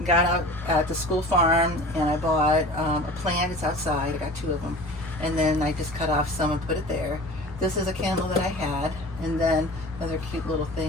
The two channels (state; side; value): normal; both; correlation 0.39